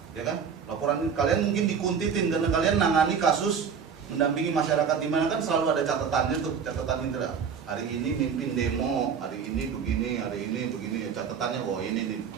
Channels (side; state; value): left; quieter; 6.7 dB